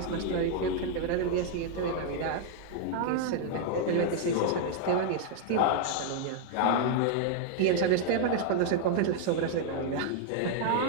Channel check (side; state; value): both; different; correlation 0.00